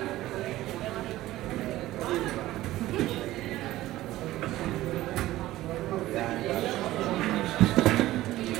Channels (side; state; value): left; quieter; 15.9 dB